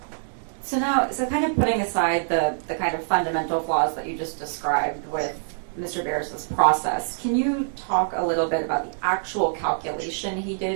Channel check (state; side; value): silent; left; digital silence